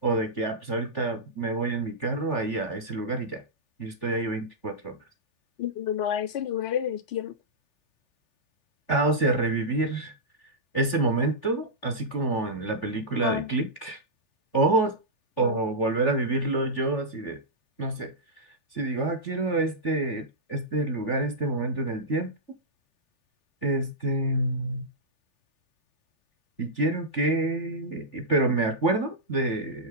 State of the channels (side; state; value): right; late; 3.4 ms